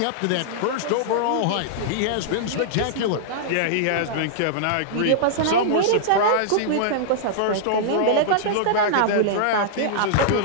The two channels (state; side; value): different; both; correlation -0.02